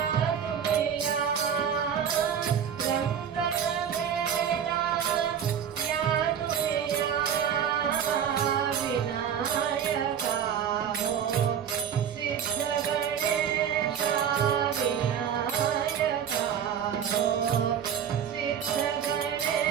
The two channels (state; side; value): quieter; left; 8.4 dB